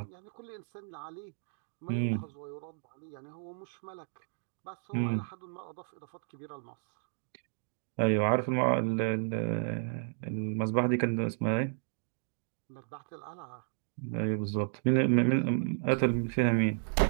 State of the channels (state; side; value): silent; left; digital silence